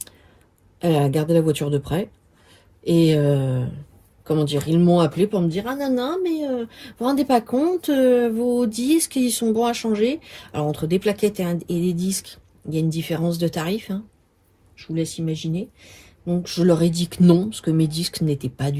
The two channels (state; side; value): identical; both; correlation 1.00